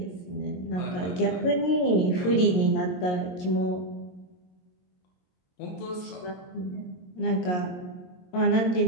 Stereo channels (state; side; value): late; right; 22 ms